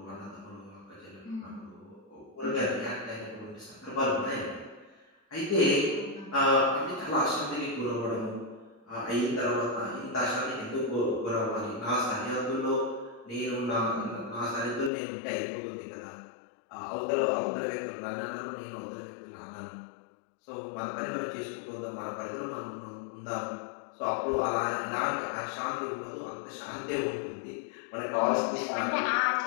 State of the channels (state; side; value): drops out; right; at 14.9 s